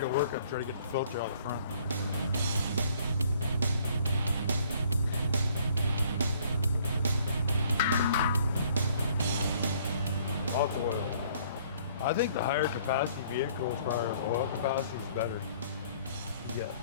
to work on, try to get the filter out the front. Lots of oil. I think the higher capacity vehicles, as far as oil capacity, is better. You get,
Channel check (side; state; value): both; inverted; correlation -0.60